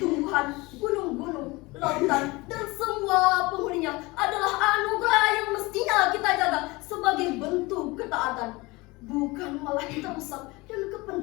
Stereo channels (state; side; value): quieter; right; 23.1 dB